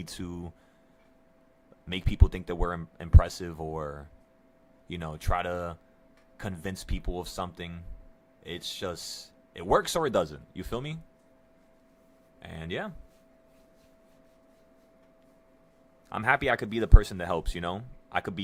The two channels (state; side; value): identical; both; correlation 1.00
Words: to make people think that we're impressive or, try to convince people of something. It's just, it works or it doesn't. You feel me? And yeah, I'm happy I could be the person that helps, I could